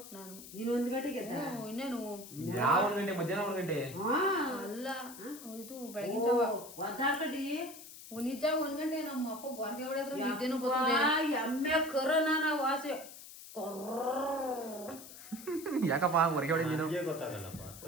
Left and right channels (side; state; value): left; noise; hiss, 15 dB below the sound